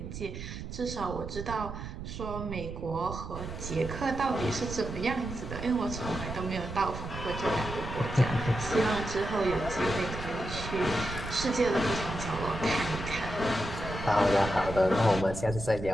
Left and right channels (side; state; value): right; noise; rumble, 8 dB below the sound